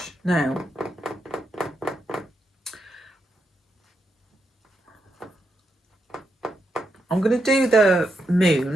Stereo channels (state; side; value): normal; both; correlation 0.83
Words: Now, I'm going to do the